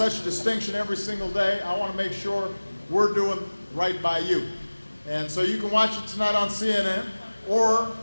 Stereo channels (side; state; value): both; inverted; correlation -1.00